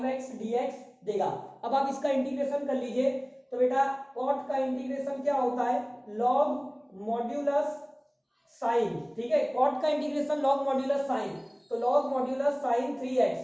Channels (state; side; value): identical; both; correlation 1.00